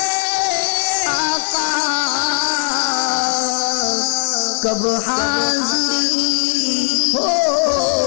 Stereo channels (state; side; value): silent; right; digital silence